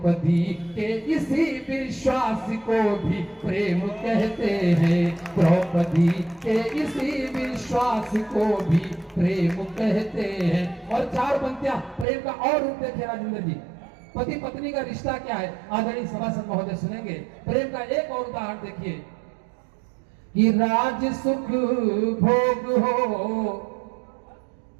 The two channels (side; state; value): left; drops out; at 12.1 s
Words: के इसी विश्वास को भी प्रेम कहते हैं, द्रौपदी के इसी विश्वास को भी प्रेम कहते हैं। और 4 पंक्तियां प्रेम का और रूप देखे राजेंद्र जी। पति पत्नी का रिश्ता क्या है, आदरणीय सभासद महोदय सुनेंगे। प्रेम का एक और उदाहरण देखिए कि राज सुख भोग हो